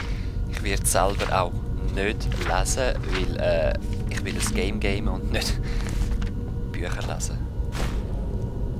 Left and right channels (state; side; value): identical; both; correlation 1.00